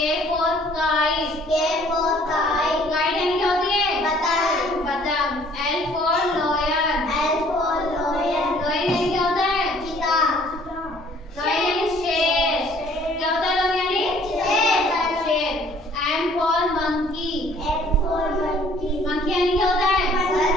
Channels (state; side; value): normal; both; correlation 0.57